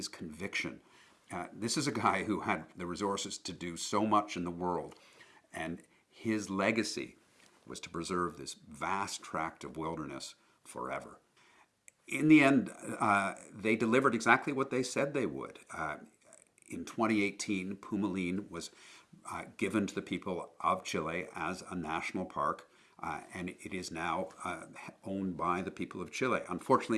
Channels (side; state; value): both; identical; correlation 1.00